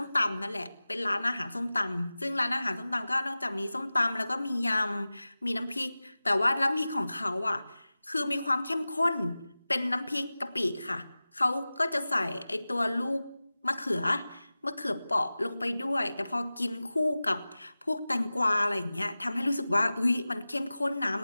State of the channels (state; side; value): inverted; both; correlation -0.97